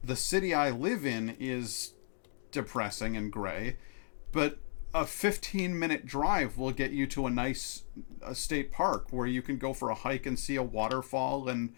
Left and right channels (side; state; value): right; silent; digital silence